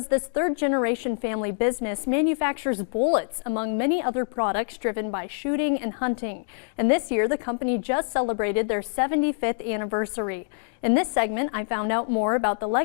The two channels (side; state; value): right; silent; digital silence